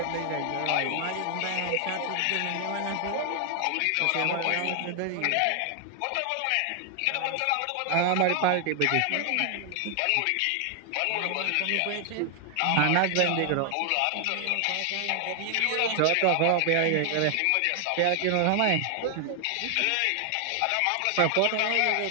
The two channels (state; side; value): different; both; correlation 0.00